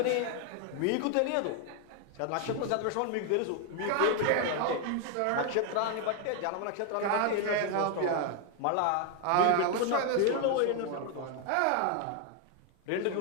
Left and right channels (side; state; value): both; different; correlation 0.01